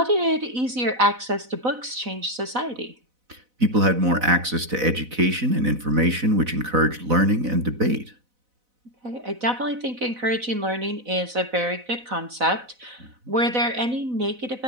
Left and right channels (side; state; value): left; late; 4.0 ms